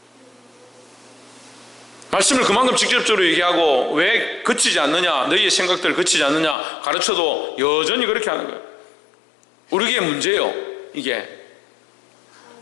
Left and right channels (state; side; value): drops out; right; at 6.6 s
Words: 말씀을 그만큼 직접적으로 얘기하고 왜 그치지 않느냐, 너희의 생각들 그치지 않느냐 가르쳐도 여전히 그렇게 하는 거예요. 우리에게 문제예요. 이게